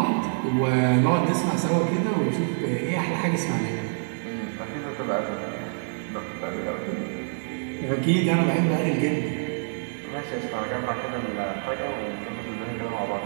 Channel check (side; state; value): left; silent; 56 dB below the other